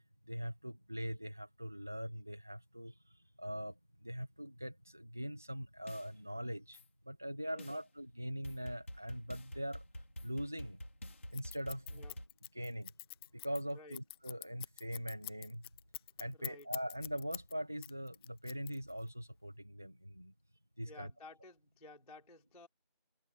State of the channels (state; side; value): inverted; both; correlation -0.92